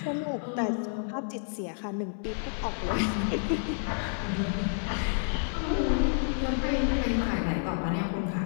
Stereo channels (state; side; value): silent; right; 58 dB below the other